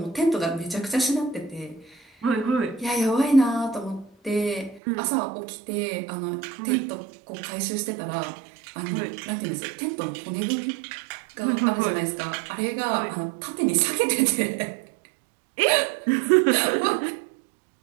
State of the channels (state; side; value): drops out; left; at 4.8 s